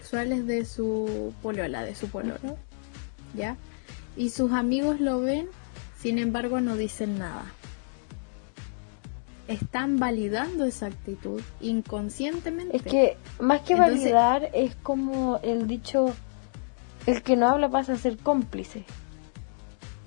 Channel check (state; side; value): silent; right; digital silence